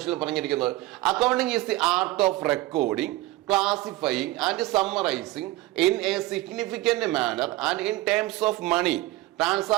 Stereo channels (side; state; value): left; quieter; 17.9 dB